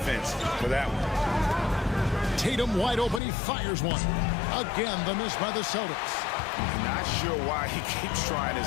for that one. Tatum wide open. He fires one. Again, the miss by the Celtics. Not sure why he keeps trying his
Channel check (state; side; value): drops out; right; at 3.2 s